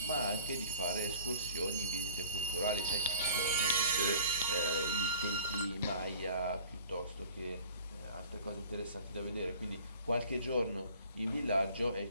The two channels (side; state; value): both; inverted; correlation -0.46